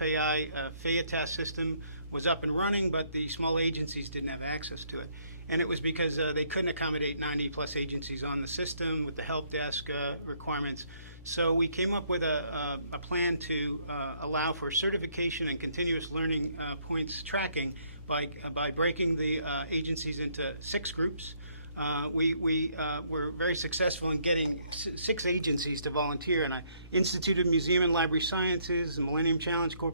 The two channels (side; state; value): both; inverted; correlation -0.68